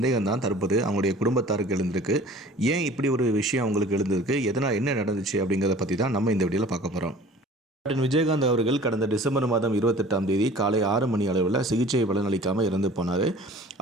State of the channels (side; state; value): both; normal; correlation 0.46